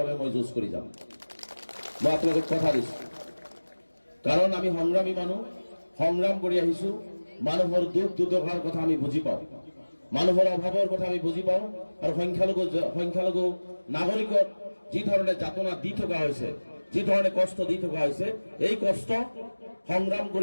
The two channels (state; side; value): inverted; both; correlation -1.00